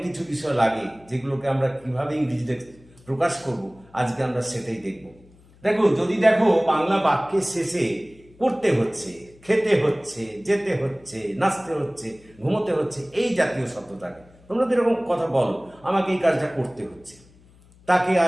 কিছু বিষয় লাগে যেগুলোকে আমরা কিভাবে ইংরেজিতে প্রকাশ করব, আজকে আমরা সেটাই দেখব। যদি দেখো বাংলা বাক্যের শেষে করতে হচ্ছে, খেতে হচ্ছে, যেতে হচ্ছে, নাচতে হচ্ছে, ঘুমোতে হচ্ছে, এই জাতীয় শব্দ থাকে। তোমরা তো এরকম কথা বলো, আমাকে এই কাজটা করতে হচ্ছে, তাকে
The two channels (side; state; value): left; noise; hum, 27 dB below the sound